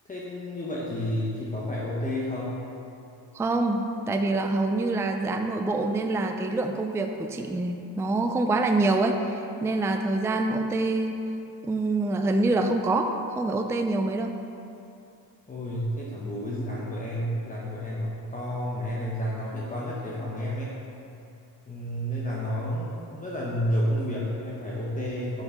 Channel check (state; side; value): normal; both; correlation 0.66